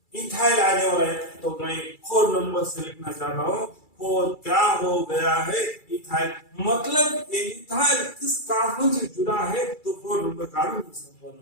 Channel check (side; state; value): right; late; 2.3 ms